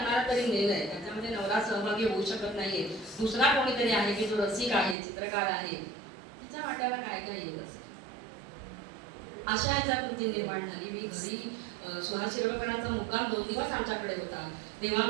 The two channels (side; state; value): left; drops out; at 5.0 s